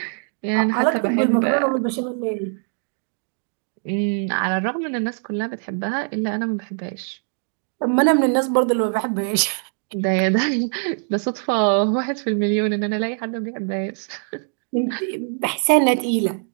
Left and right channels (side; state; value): left; silent; 55 dB below the other